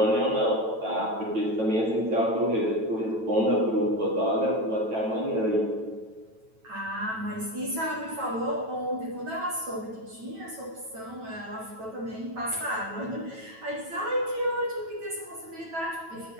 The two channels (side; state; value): left; late; 9.1 ms